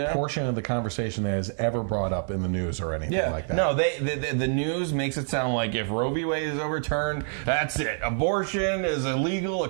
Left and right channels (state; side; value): silent; left; 60 dB below the other